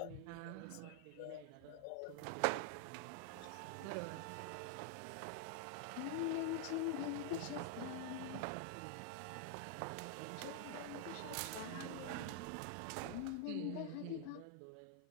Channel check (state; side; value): different; both; correlation 0.00